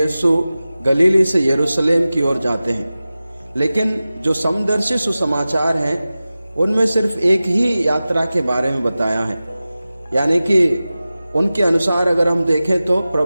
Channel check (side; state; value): both; inverted; correlation -0.96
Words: गलीली से यरूशलेम की ओर जाते हैं। लेकिन जो समदर्शी सुसमाचार हैं उनमें सिर्फ एक ही यात्रा के बारे में बताया है, यानी कि उनके अनुसार अगर हम देखें तो